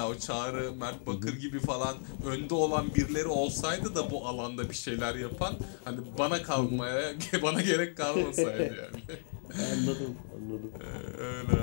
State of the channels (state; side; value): silent; right; digital silence